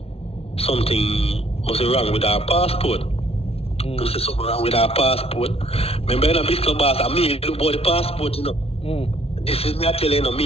something must be wrong with our passport. They say something wrong with our passport. Remember, in a big club, I mean, look about the passport, you know. This is me telling you,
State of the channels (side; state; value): right; late; 0.29 ms